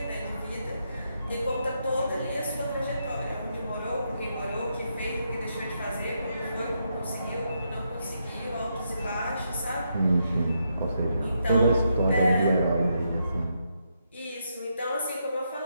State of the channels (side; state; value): both; inverted; correlation -0.80